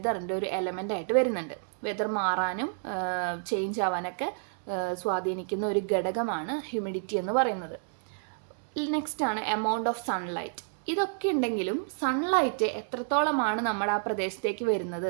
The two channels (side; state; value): left; silent; digital silence